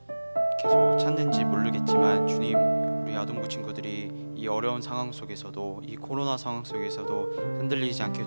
계속 찾는지 모르겠지만 주님, 우리 아동부 친구들이 이 어려운 상황 속에서도, 이 코로나 상황 속에서도 흔들리지 않게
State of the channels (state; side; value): inverted; both; correlation -1.00